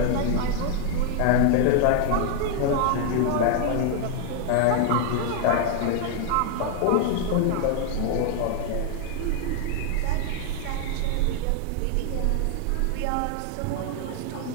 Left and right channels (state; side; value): different; both; correlation 0.00